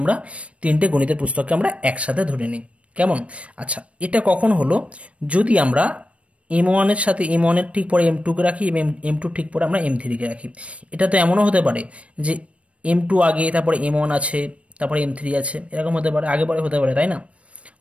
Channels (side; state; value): left; late; 0.063 ms